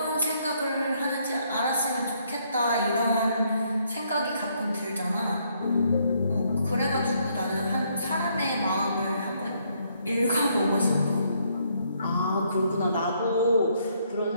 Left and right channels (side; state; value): both; inverted; correlation -0.71